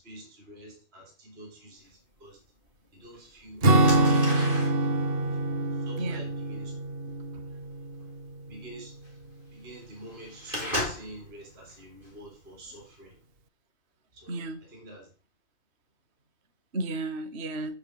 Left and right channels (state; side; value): late; left; 2.5 ms